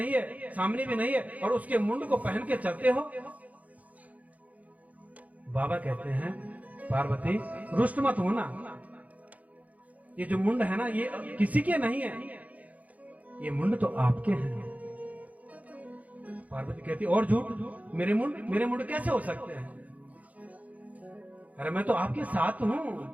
है, सामने भी नहीं है, और उसके मुंड को पहन के चलते हो। बाबा कहते हैं पार्वती रुष्ट मत होना, ये जो मुंड है ना, ये किसी के नहीं है, ये मुंड तो आपके हैं। पार्वती कहती और झूठ, मेरे मुंड कैसे हो सकते हैं? अरे मैं तो आपके साथ हूं।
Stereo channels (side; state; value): left; late; 0.072 ms